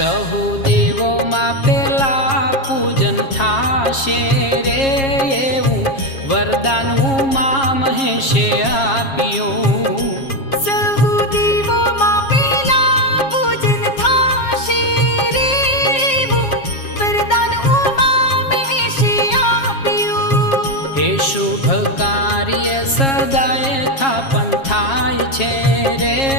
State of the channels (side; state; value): right; late; 7.4 ms